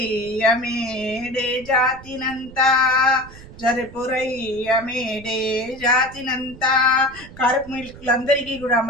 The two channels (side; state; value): right; noise; rumble, 18 dB below the sound